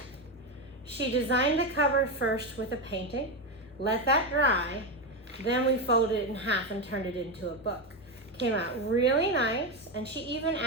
she designed the cover first with a painting, let that dry, then we folded it in half and turned it into a book. Came out really nice, and she even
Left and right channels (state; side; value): normal; both; correlation 0.12